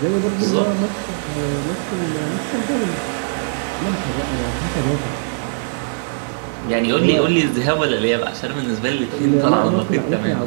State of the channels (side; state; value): left; silent; 66 dB below the other